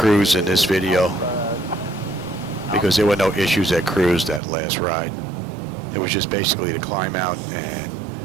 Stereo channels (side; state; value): left; drops out; at 4.4 s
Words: in this video because there were no issues at cruise that last ride. It was just basically the climb out and